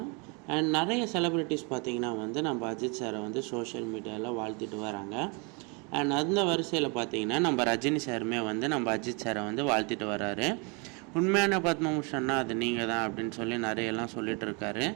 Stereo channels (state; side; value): quieter; left; 32.5 dB